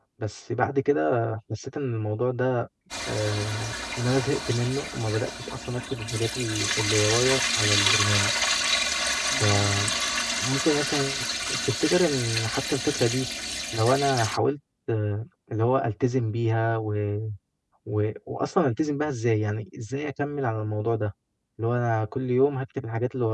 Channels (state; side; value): identical; both; correlation 1.00